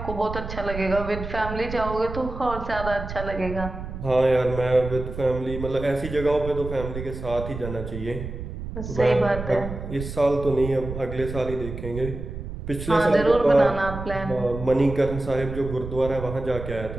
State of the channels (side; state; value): right; noise; rumble, 8 dB below the sound